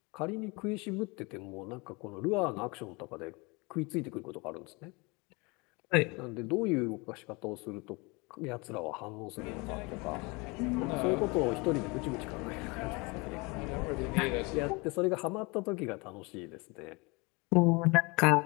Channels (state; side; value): quieter; right; 27.4 dB